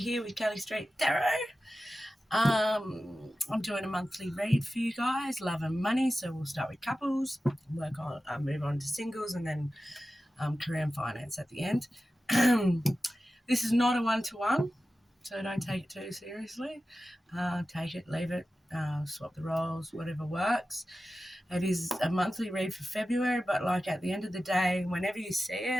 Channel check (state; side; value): normal; both; correlation 0.94